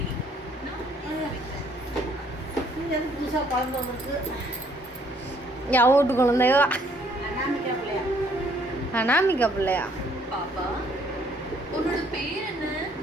என் வீட்டு குழந்தையோ அனாமிகா பிள்ளையா? பாப்பா உன்னோட பேர் என்ன?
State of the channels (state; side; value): normal; both; correlation 0.64